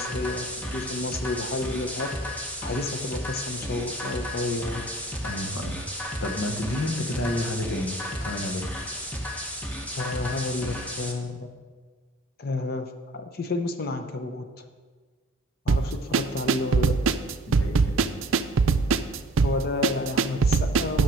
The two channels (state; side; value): normal; both; correlation 0.51